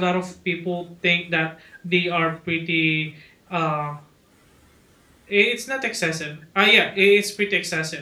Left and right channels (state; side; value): identical; both; correlation 1.00